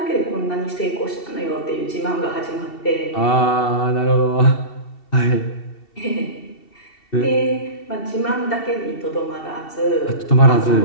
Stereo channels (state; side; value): late; right; 2.7 ms